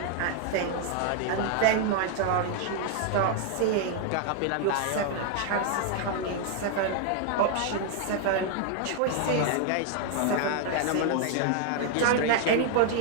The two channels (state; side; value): different; both; correlation 0.00